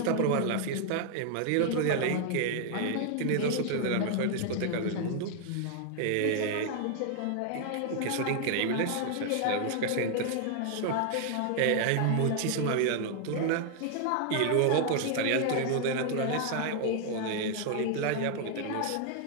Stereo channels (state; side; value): different; both; correlation 0.00